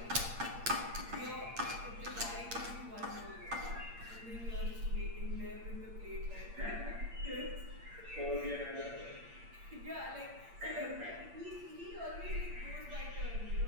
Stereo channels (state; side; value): late; left; 8.7 ms